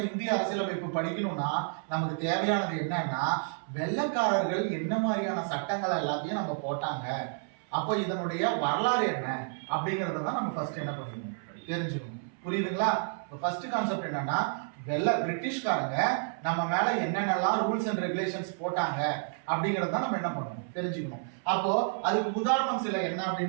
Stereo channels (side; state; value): left; silent; 58 dB below the other